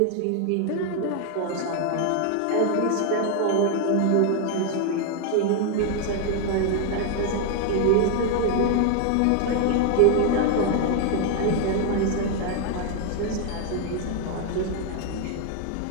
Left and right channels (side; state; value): both; different; correlation 0.00